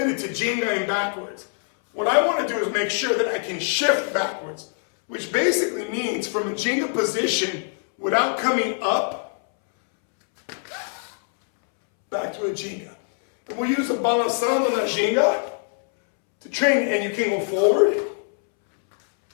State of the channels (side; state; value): right; silent; 63 dB below the other